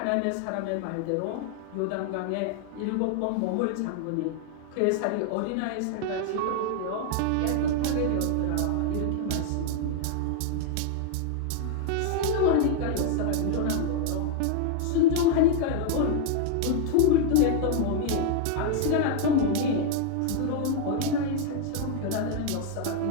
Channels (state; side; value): different; both; correlation 0.00